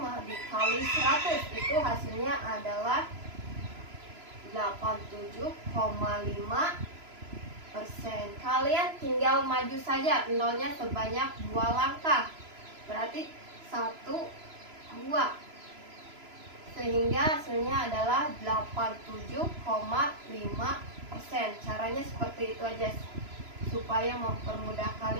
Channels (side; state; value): left; late; 3.0 ms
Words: dikali 100 itu hasilnya adalah 87,5%. Kalian tinggal maju saja nolnya sebanyak 2 langkah. Berarti 1, 2. Sehingga hasilnya adalah 87,5%. Caranya seperti itu aja supaya mempermudah